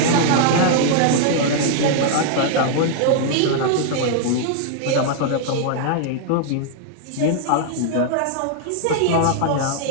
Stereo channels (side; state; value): both; different; correlation -0.01